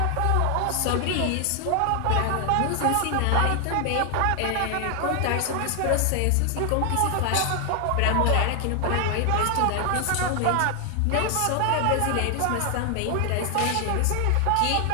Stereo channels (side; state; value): both; different; correlation 0.00